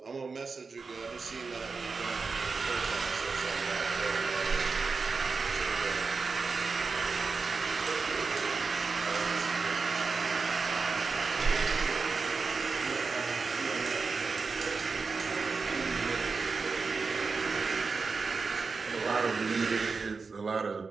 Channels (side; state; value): left; quieter; 4.6 dB